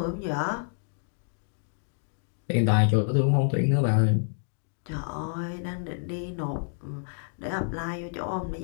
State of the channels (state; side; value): silent; right; digital silence